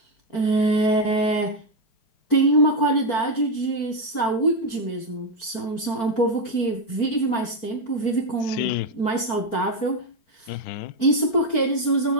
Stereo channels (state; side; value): late; right; 4.4 ms